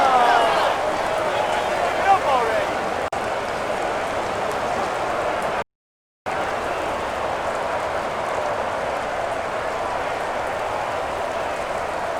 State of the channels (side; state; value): both; identical; correlation 1.00